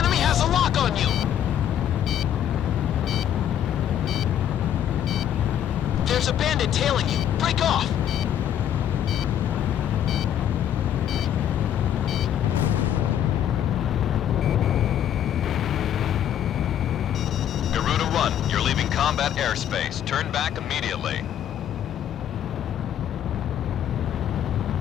has a lock on you! There's a bandit tailing you. Break off! Garuda 1, you're leaving combat airspace. Turn back immediately.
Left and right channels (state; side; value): quieter; right; 10.2 dB